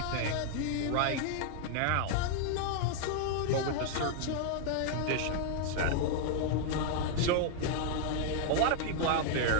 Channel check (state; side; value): different; both; correlation 0.00